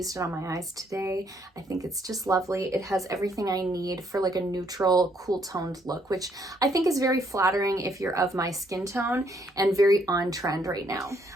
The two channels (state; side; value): normal; both; correlation 0.69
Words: it on my eyes today. I think it's just lovely. It has everything I need for like a neutral, cool toned look, which I think is very flattering if you're of my skin tone and very on trend right now.